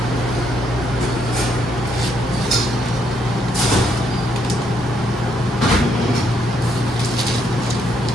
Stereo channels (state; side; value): normal; both; correlation 0.74